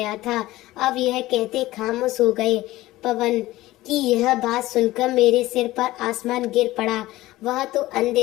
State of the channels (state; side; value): quieter; right; 17.2 dB